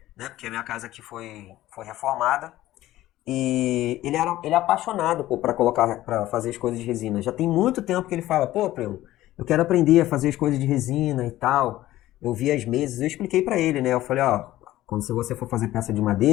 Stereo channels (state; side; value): quieter; right; 15.3 dB